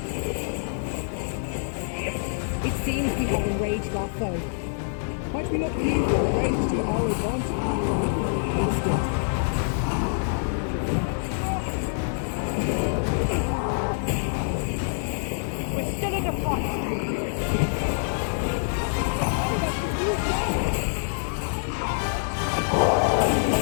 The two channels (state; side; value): silent; right; 61 dB below the other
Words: It seems we have enraged our foe. Might we not use our rage to our advantage? Instant. We're still in a fight.